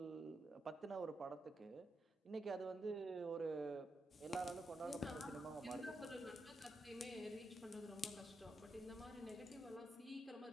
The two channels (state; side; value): normal; both; correlation 0.84